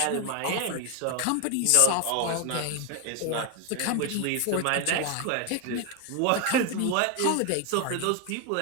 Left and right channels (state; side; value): different; both; correlation 0.01